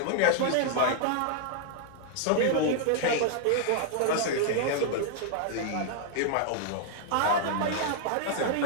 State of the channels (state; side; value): different; both; correlation 0.00